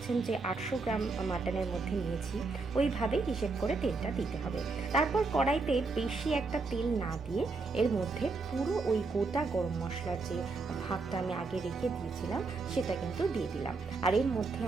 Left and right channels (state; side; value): quieter; left; 3.9 dB